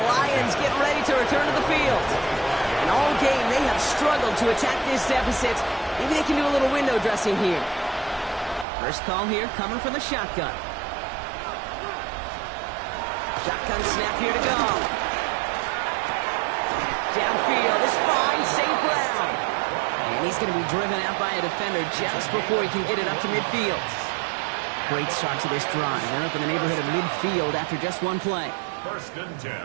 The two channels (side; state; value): left; drops out; at 8.7 s